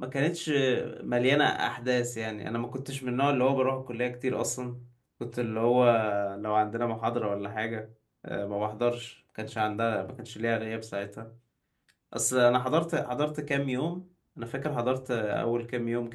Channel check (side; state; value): both; identical; correlation 1.00